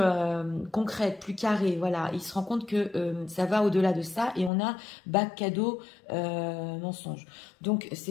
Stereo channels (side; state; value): right; drops out; at 4.5 s